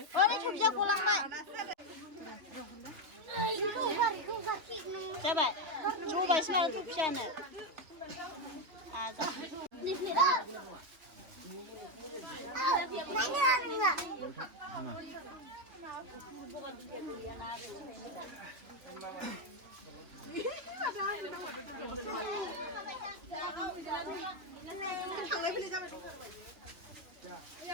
ओरै सबजिया गलांबाय जाबाय जबायसो माथो थफियानो आजा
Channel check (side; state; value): left; late; 3.0 ms